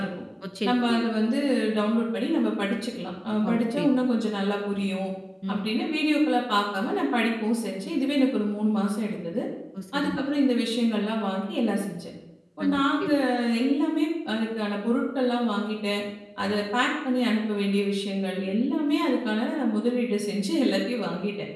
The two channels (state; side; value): identical; both; correlation 1.00